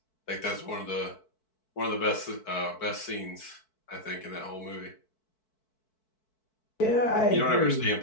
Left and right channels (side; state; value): right; late; 4.6 ms